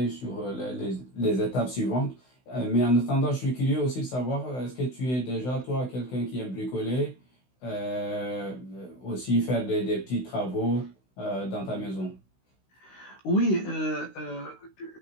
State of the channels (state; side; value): late; right; 16 ms